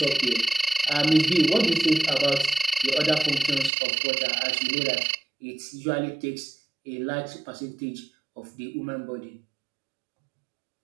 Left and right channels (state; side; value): drops out; left; at 3.7 s